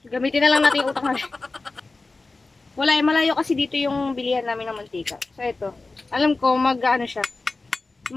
Gamitin na lang natin yung utak natin. Wala, malayo kasi dito yung bilihan namin ng mantika. So, ito. Alam ko, siya.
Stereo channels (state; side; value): quieter; right; 3.5 dB